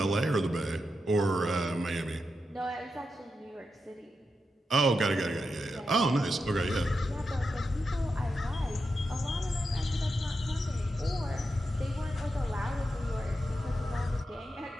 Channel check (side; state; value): both; normal; correlation 0.87